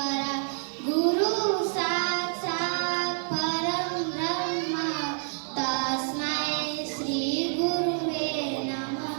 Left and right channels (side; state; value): left; silent; digital silence